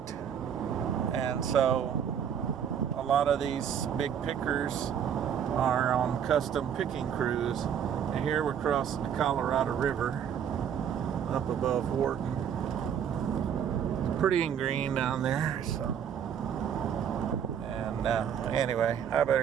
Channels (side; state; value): left; quieter; 8.5 dB